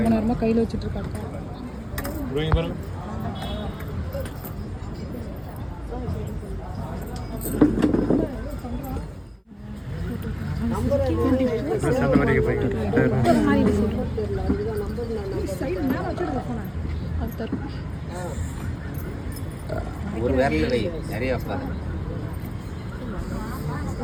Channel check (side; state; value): both; identical; correlation 1.00